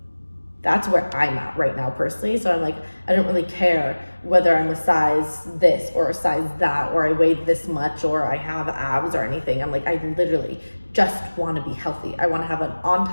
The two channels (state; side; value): inverted; both; correlation -1.00